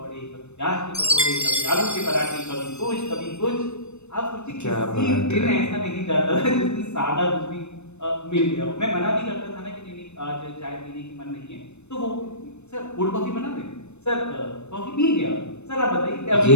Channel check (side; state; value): right; late; 0.81 ms